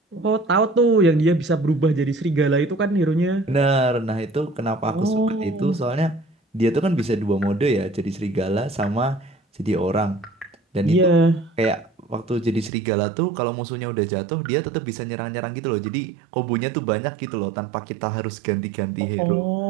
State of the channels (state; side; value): drops out; left; at 12.7 s